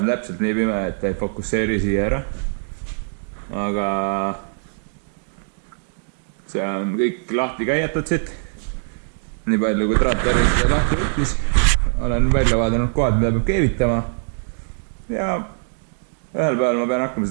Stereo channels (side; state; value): left; silent; digital silence